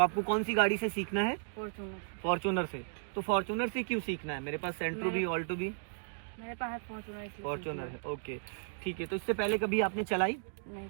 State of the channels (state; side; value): silent; left; digital silence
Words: कौन सी गाड़ी से सीखना है? फॉर्च्यूनर। फॉर्च्यूनर से। तो फॉर्च्यूनर से क्यों सीखना है? मेरे पास सेंट्रो भी, ऑल्टो भी। मेरे पास है फॉर्च्यूनर। फॉर्च्यूनर है, ओके ठीक है। तो इससे पहले कभी आपने चलाई?